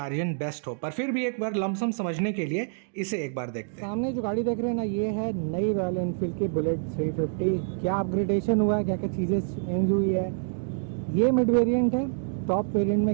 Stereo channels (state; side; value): silent; left; digital silence